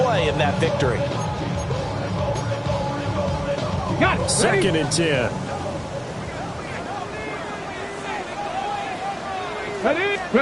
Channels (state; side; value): identical; both; correlation 1.00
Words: in that victory. Got it. 2nd and 10.